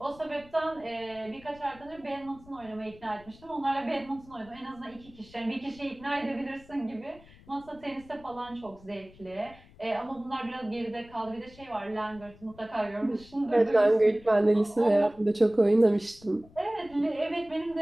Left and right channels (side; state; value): left; noise; rumble, 23 dB below the sound